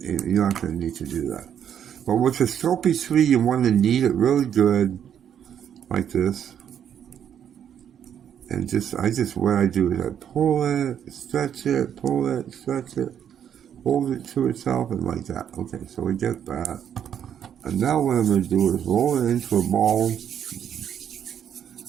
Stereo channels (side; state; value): left; quieter; 9.0 dB